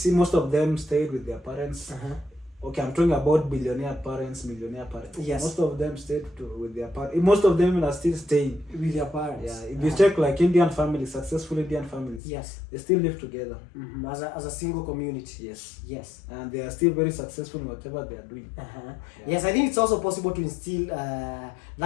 most of them stayed with their parents. Okay, I'm talking about billionaire parents, millionaire parents. Yes. Most of them stayed with their parents. Most of them are still staying with their parents. Yeah. If you check like Indian families, successful Indian families, yes, they still live together. As a single community. Yes. Yes. And they are still very successful in whatever they are doing. Yes, I think it's also possible to instill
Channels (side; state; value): right; drops out; at 12.2 s